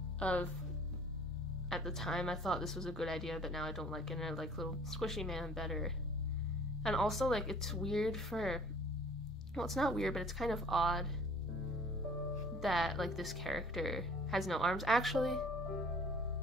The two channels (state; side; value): normal; both; correlation 0.52